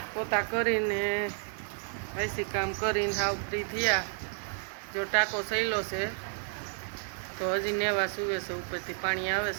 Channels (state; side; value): silent; left; 57 dB below the other